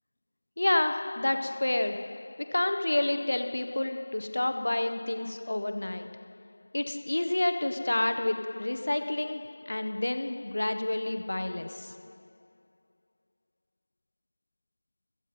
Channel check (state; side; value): inverted; both; correlation -1.00